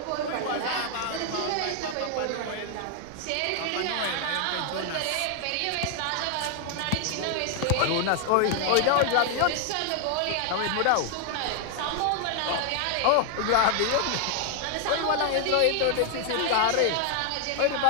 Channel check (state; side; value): different; both; correlation 0.00